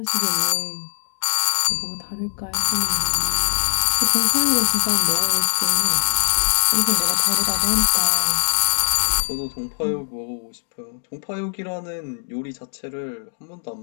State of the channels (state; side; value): silent; right; digital silence